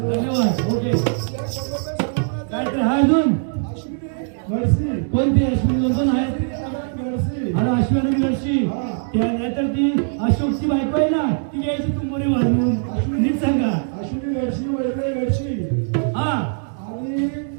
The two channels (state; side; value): silent; left; 65 dB below the other